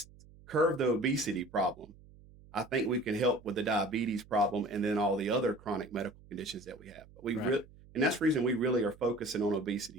curb the obesity problem, I think we can help with the diabetes problem and then all the other chronic medical conditions that we have. But Right. and that's the reason we really are focusing on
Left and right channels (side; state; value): right; noise; hum, 23 dB below the sound